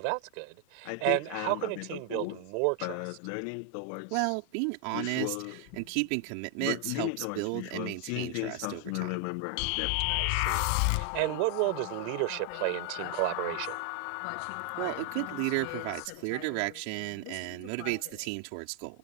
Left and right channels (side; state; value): both; different; correlation 0.00